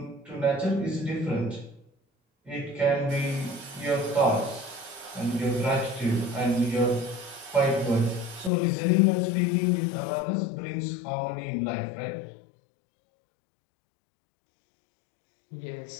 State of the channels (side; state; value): right; drops out; at 8.5 s